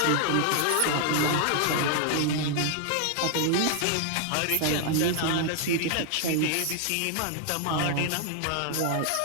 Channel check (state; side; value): different; both; correlation 0.00